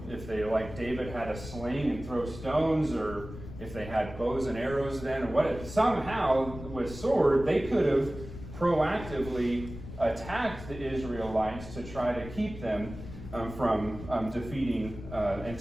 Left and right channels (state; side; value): noise; left; rumble, 12 dB below the sound